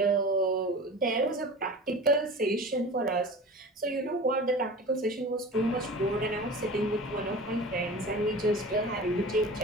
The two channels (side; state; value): both; normal; correlation 0.36